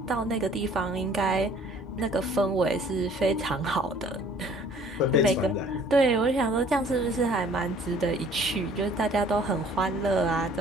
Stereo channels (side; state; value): both; normal; correlation 0.54